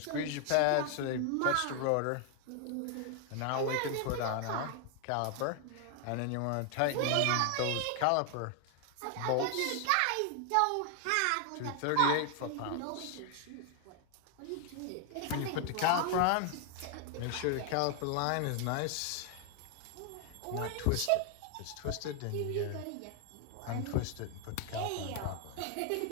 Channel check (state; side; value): different; both; correlation 0.00